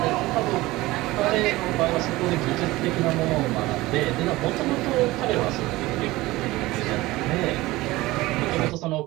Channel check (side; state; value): left; quieter; 19.2 dB